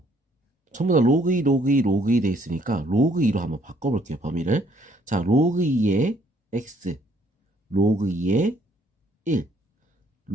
전부 다 로그 2, 로그 2, 로그 2 돼 있으니까 로그 2로 한번 바꿔볼게요, 범위를. 자, 로그 2의 x, 로그 2의 1,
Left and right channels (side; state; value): both; normal; correlation 0.65